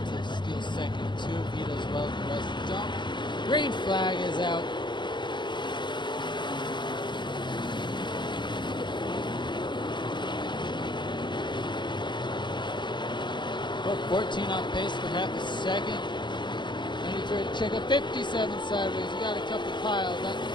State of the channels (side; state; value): right; late; 0.22 ms